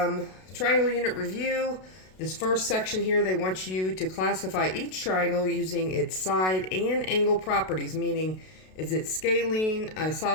triangle unit review. This first section here, they want you to classify each triangle using its side and angle properties, meaning is it scalene,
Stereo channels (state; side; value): late; right; 32 ms